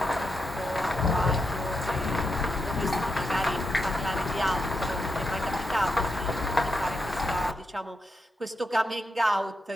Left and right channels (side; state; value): both; normal; correlation 0.84